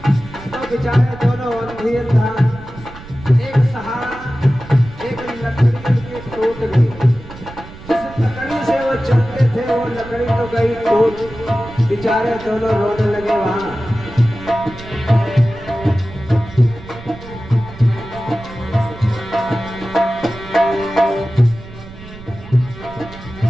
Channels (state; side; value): noise; right; rumble, 16 dB below the sound